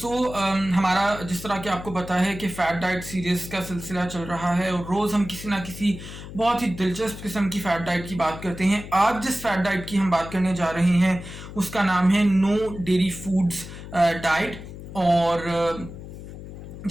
हमारा जिस तरह कि आपको पता है कि फ़ैट डाइट सीरीज़ का सिलसिला चल रहा है और रोज़ हम किसी ना किसी बहुत ही दिलचस्प किस्म की फ़ैट डाइट की बात करते हैं। आज जिस फ़ैट डाइट की हम बात करने जा रहे हैं उसका नाम है नो डेयरी फूड्स डाइट। और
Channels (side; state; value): left; noise; hum, 12 dB below the sound